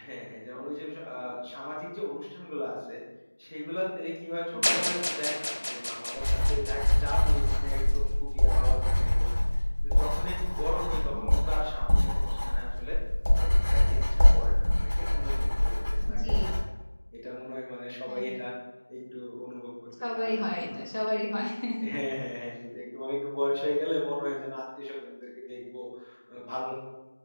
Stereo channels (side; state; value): both; inverted; correlation -1.00